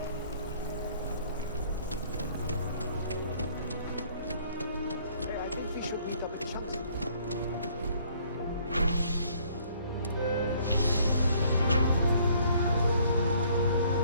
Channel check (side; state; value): both; inverted; correlation -0.61